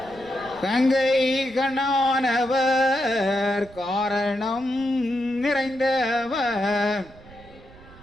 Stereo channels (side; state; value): right; noise; rumble, 22 dB below the sound